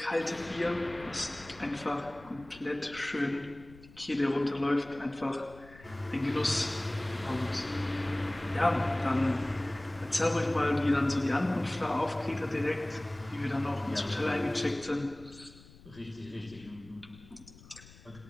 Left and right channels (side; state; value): left; noise; rumble, 21 dB below the sound